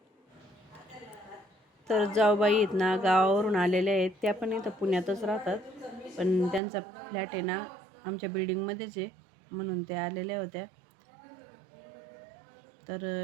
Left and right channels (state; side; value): drops out; left; at 6.6 s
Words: तर जाऊबाई आहेत ना, गावावरून आलेल्या आहेत. त्या पण इथं पुण्यातच राहतात, पण त्यांचा फ्लॅट आहे ना आमच्या बिल्डिंगमध्येच आहे, म्हणून त्या आलेल्या होत्या.